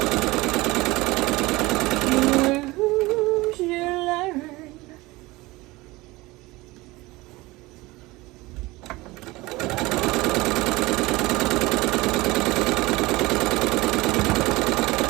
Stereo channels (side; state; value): left; quieter; 21.1 dB